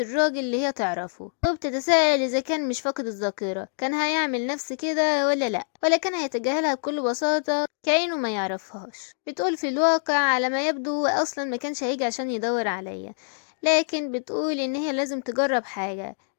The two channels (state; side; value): silent; right; digital silence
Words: اللي هي تعرفه، وبتتساءل اذا كان مش فاقد الذاكرة كان هيعمل نفس كده ولا لا، ولا كان هيتجاهلها بكل بساطة كأنه ما يعرفهاش. بتقول في الواقع على ما يبدو هو اصلا ما كانش هيجي عشان يدور عليا، لكن بتقول ان هي لازم تجرب حاجة،